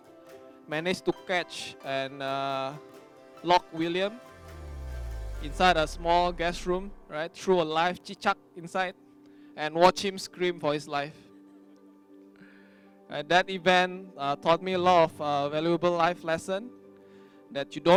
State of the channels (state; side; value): identical; both; correlation 1.00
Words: managed to catch and lock William inside a small guest room, right? Threw a live chichak inside and watch him scream for his life. That event taught me a lot of valuable life lesson, that you